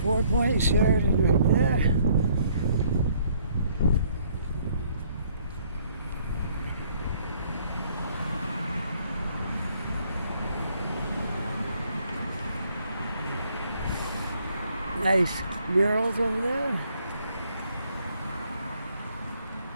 Four-Point Sheridan right there. Nice murals over there.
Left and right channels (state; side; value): inverted; both; correlation -0.64